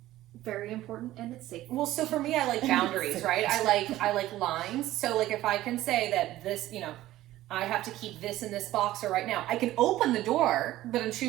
very important and it's safe. well, so for me, I like boundaries, right? I like lines. So like if I can say that this, you know, I have to keep this in this boxer right now. I can open the door, but I'm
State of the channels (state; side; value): quieter; left; 15.2 dB